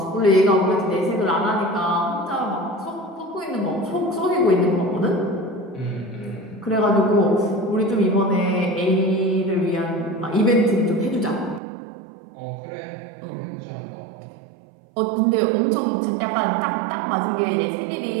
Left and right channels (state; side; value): drops out; left; at 11.6 s